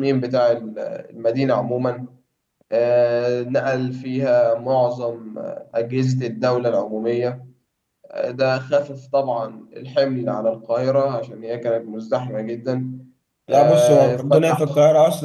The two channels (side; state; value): both; identical; correlation 1.00